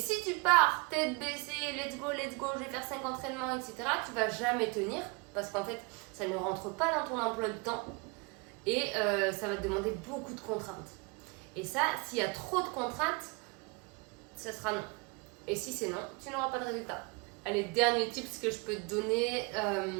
tu pars tête baissée, let's go, je vais faire 5 entraînements, etc., tu vas jamais tenir parce qu'en fait, ça ne rentre pas dans ton emploi de temps et ça va te demander beaucoup de contraintes. Et ça, s'il y a trop de contraintes, ça sera non. Et si c'est non, tu n'auras pas de résultat. Allez, dernier tips que je peux te donner,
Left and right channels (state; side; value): quieter; left; 29.1 dB